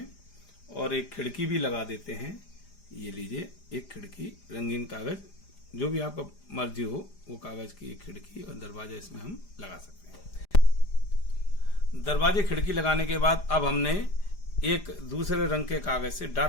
और एक खिड़की भी लगा देते हैं। ये लीजिए, एक खिड़की रंगीन कागज, जो भी आपका मर्जी हो वो कागज की एक खिड़की और दरवाजा इसमें हम लगा सकते हैं। दरवाजे खिड़की लगाने के बाद अब हमने एक दूसरे रंग के कागज से,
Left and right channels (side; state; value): right; late; 4.9 ms